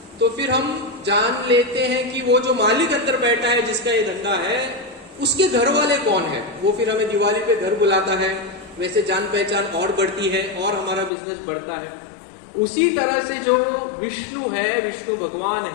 तो फिर हम जान लेते हैं कि वो जो मालिक अंदर बैठा है, जिसका ये धंधा है, उसके घर वाले कौन है। वो फिर हमें दिवाली पे घर बुलाता है, वैसे जान पहचान और बढ़ती है और हमारा बिजनेस बढ़ता है। उसी तरह से जो विष्णु है, विष्णु भगवान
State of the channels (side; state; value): right; drops out; at 11.1 s